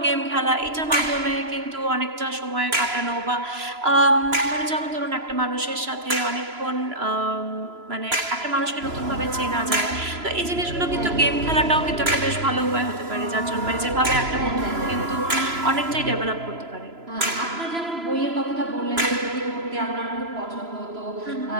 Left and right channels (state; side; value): late; left; 3.0 ms